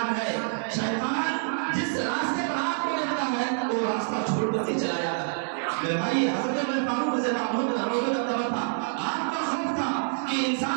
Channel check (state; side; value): silent; left; digital silence